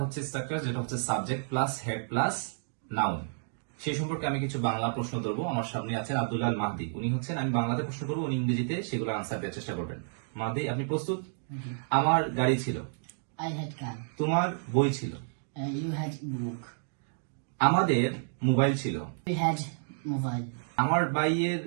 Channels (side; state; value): left; silent; digital silence